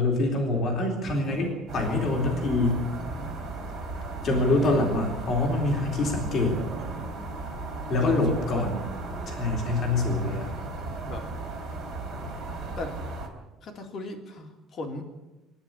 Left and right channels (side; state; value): both; normal; correlation 0.36